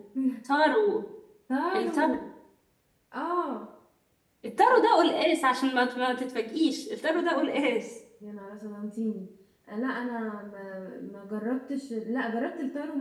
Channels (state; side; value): identical; both; correlation 1.00